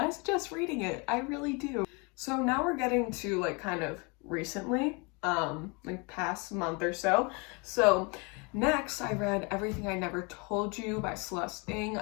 suggest reading it. I really do. So now we're getting to like kind of recently, like past month or so. So next, I read Everything I Never Told You by Celeste Ng.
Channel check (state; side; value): quieter; right; 30.1 dB